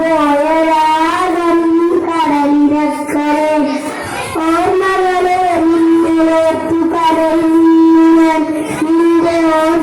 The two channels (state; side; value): identical; both; correlation 1.00